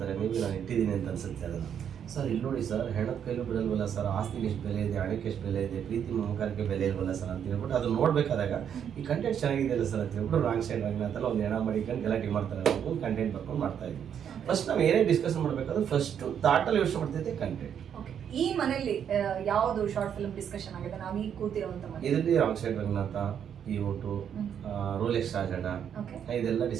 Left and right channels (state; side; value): quieter; left; 8.5 dB